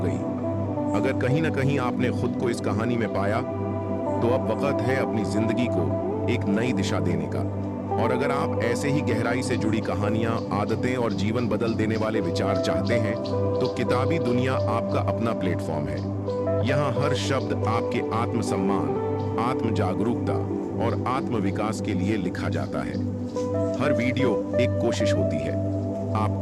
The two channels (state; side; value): identical; both; correlation 1.00